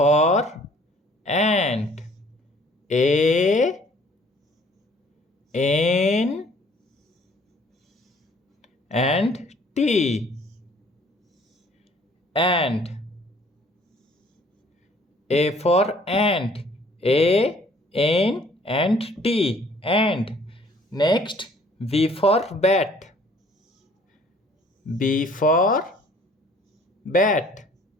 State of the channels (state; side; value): normal; both; correlation 0.57